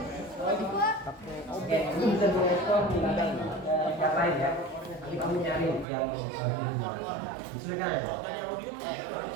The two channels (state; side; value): drops out; left; at 5.9 s